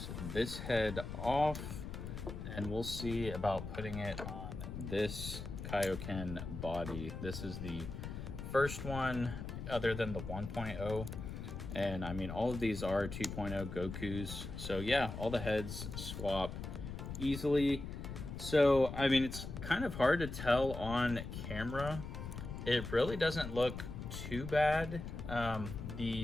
this head off and we'll see about putting it on this Kaioken body. This is the first one other than the 1.0. And I mean, all of these are 2.0 Gokus. So yeah, all the heads swap easily. So, I mean, it's kind of hard to tell on camera. It really doesn't look too bad.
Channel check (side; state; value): left; noise; rumble, 7 dB below the sound